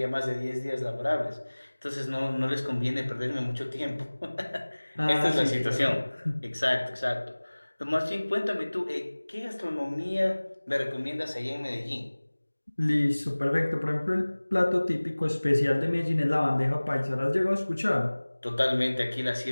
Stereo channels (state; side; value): inverted; both; correlation -1.00